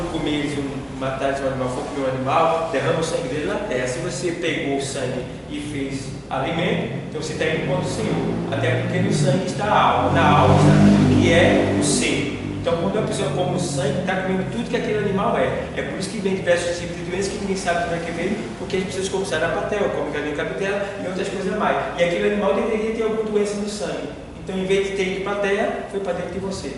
comer matar um animal, for comer um animal, derrama o sangue dele na terra. Se você pegou o sangue e fez alimento, então você está indo contra o Senhor. Até porque no sangue está a alma, na alma está tudo que é o ser. Então, quando a pessoa come o sangue, está comendo tudo que aquele animal é. É por isso que vem diversos tipos de doenças que ninguém sabe como é que vem, porque as pessoas comem sarapatel, comem galinha cabidela e outras coisas mais. E aquele animal deveria ter alguma doença no sangue. Então, em vez de ter ido para a terra, foi para dentro de você.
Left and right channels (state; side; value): identical; both; correlation 1.00